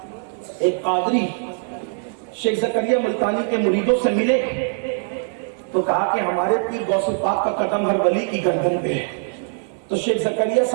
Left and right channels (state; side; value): silent; left; digital silence